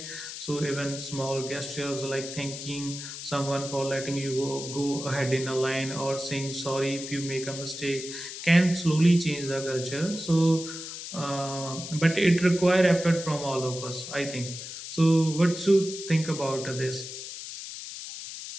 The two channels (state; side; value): noise; left; hiss, 9 dB below the sound